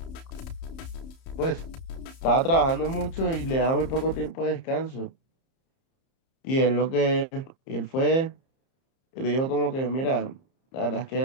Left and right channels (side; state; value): right; late; 31 ms